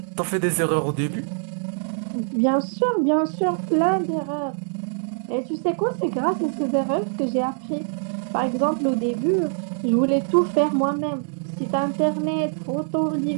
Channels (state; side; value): silent; left; 63 dB below the other